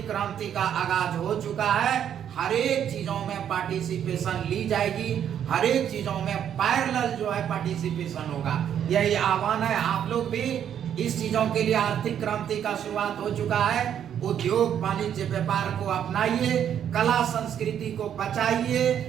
क्रांति का आगाज हो चुका है, हर एक चीजों में पार्टिसिपेशन ली जाएगी, हर एक चीजों में पैरेलल जो है पार्टिसिपेशन होगा। यही आह्वान है, आप लोग भी इस चीजों के लिए आर्थिक क्रांति का शुरुआत हो चुका है। उद्योग वाणिज्य व्यापार को अपनाइए, कला संस्कृति को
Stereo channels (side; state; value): left; quieter; 9.3 dB